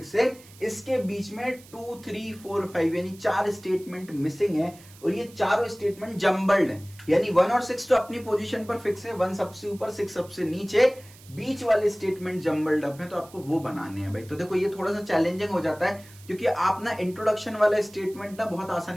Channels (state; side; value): noise; right; hiss, 23 dB below the sound